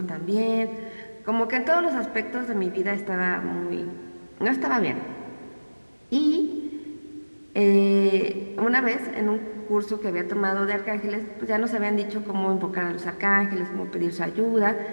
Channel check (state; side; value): inverted; both; correlation -1.00